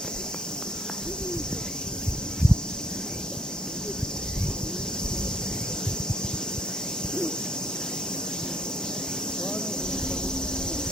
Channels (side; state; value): both; normal; correlation 0.62